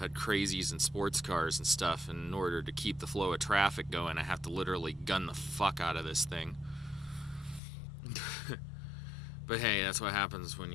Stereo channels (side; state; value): right; drops out; at 7.6 s